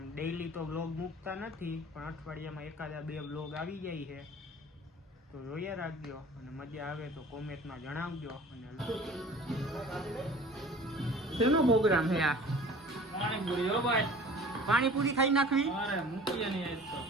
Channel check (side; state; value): both; normal; correlation 0.45